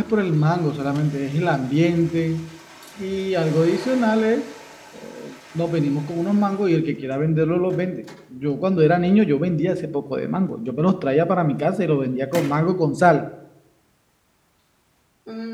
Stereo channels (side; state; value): both; identical; correlation 1.00